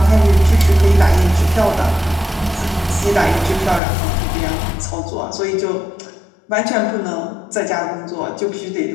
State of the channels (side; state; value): right; drops out; at 3.8 s